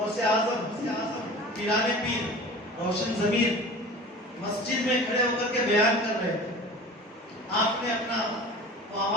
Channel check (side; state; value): both; normal; correlation 0.39